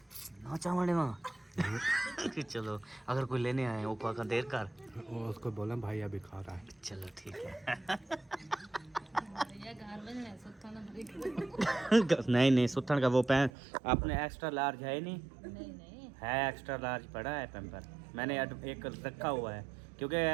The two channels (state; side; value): drops out; left; at 13.5 s